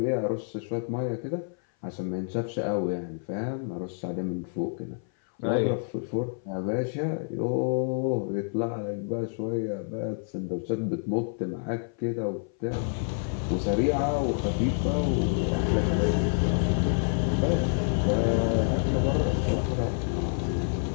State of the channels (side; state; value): right; silent; 57 dB below the other